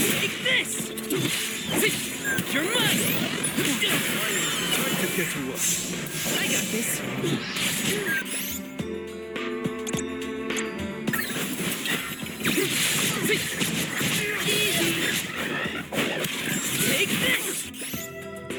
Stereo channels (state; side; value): identical; both; correlation 1.00